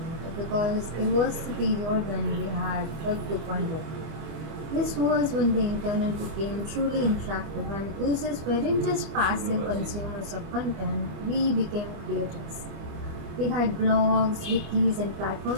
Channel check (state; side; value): late; left; 25 ms